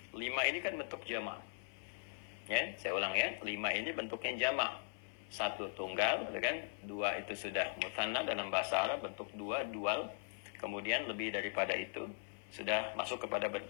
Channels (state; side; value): silent; right; 51 dB below the other